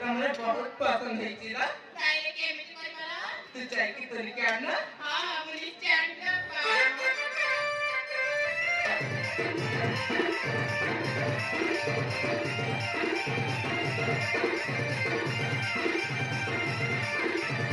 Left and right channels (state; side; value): identical; both; correlation 1.00